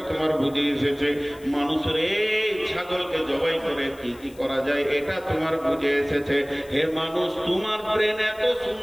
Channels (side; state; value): left; noise; hiss, 25 dB below the sound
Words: তোমার বুঝে এসেছে। মানুষের এই ছাগলকে জবাই করে কি কি করা যায়, এটা তোমার বুঝে এসেছে। হে মানুষ, তোমার ব্রেন এত